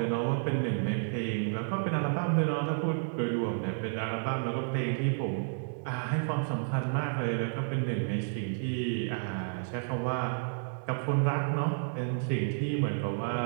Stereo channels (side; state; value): left; silent; digital silence